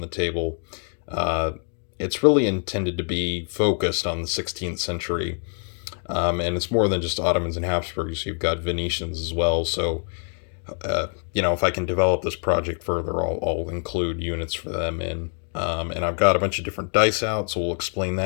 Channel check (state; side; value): silent; right; 57 dB below the other